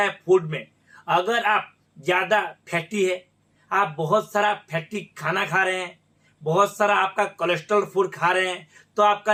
है फूड में, अगर आप ज्यादा फैटी है, आप बहुत सारा फैटी खाना खा रहे हैं, बहुत सारा आपका कोलेस्ट्रॉल फूड खा रहे हैं, तो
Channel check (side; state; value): both; identical; correlation 1.00